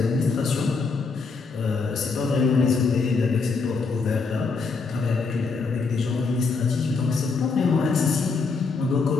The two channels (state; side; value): quieter; right; 4.4 dB